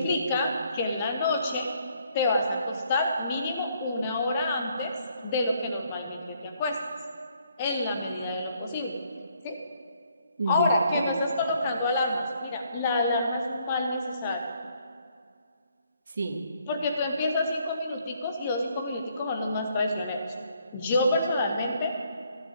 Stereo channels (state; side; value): inverted; both; correlation -0.68